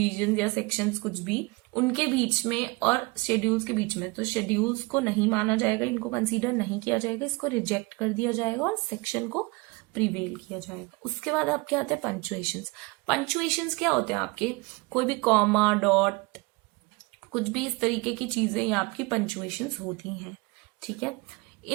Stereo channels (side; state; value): left; quieter; 26.0 dB